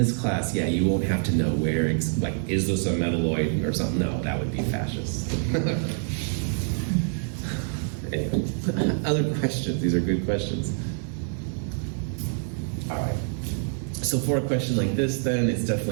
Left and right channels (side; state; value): left; silent; 61 dB below the other